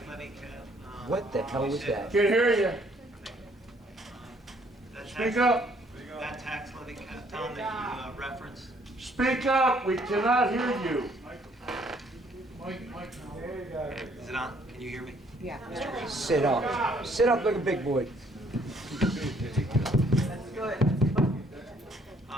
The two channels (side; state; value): both; normal; correlation 0.64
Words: levy cap. What the hell was that? Can't hear you. Speak up. That tax levy cap, Tom, that you referenced. Speak up. We cannot hear you. Is it on? Can you hear me? Yeah. Sit up. Sit up like a big boy.